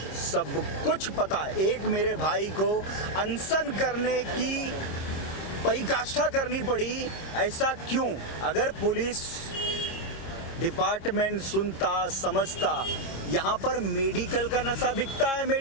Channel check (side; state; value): right; late; 26 ms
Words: सब कुछ पता है। एक मेरे भाई को अनशन करने की परिकाष्ठा करनी पड़ी, ऐसा क्यों? अगर पुलिस डिपार्टमेंट सुनता, समझता, यहाँ पर मेडिकल का नशा बिकता है।